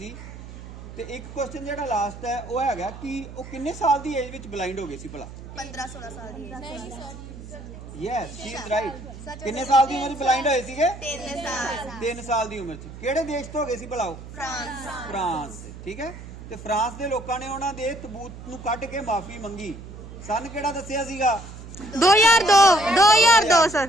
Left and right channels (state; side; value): noise; right; hum, 14 dB below the sound